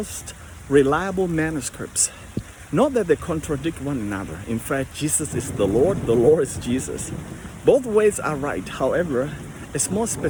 reliable manuscripts. Not that they contradict one another. In fact, Jesus is the Lord is Jesus. Both ways are right. However, it's more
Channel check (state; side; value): identical; both; correlation 1.00